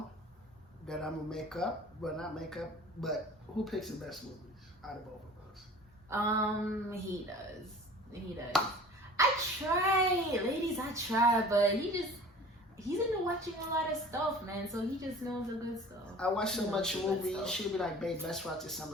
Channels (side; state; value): both; normal; correlation 0.44